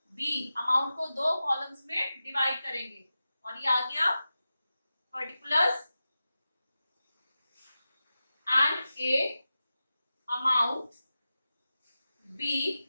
बी अमाउंट को दो कॉलम्स में डिवाइड करेंगे, और ये आ गया particulars and A amount, B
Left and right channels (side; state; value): both; inverted; correlation -0.93